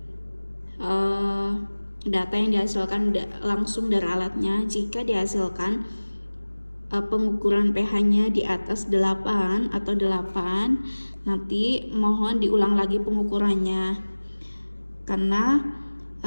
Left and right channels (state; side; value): inverted; both; correlation -1.00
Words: data yang dihasilkan langsung dari alatnya, jika dihasilkan pengukuran pH-nya di atas 8 atau 8, nanti mohon diulang lagi pengukurannya, karena